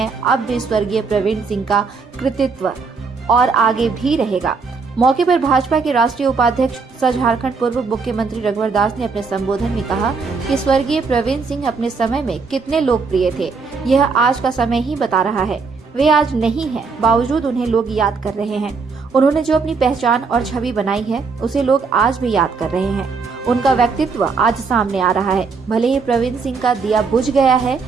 अब भी स्वर्गीय प्रवीण सिंह का कृतित्व और आगे भी रहेगा। मौके पर भाजपा के राष्ट्रीय उपाध्यक्ष सह झारखंड पूर्व मुख्यमंत्री रघुवर दास ने अपने संबोधन में कहा कि स्वर्गीय प्रवीण सिंह अपने समय में कितने लोकप्रिय थे, यह आज का समय ही बता रहा है। वे आज नहीं हैं, बावजूद उन्हें लोग याद कर रहे हैं। उन्होंने जो अपनी पहचान और छवि बनाई है उसे लोग आज भी याद कर रहे हैं। उनका व्यक्तित्व आज सामने आ रहा है। भले ही प्रवीण सिंह का दिया बुझ गया है,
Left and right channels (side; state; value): left; quieter; 4.8 dB